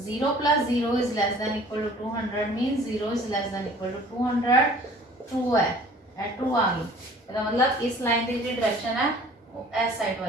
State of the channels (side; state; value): both; normal; correlation 0.50